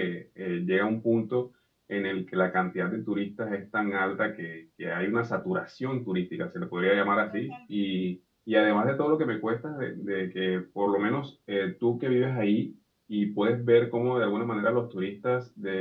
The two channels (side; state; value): both; identical; correlation 1.00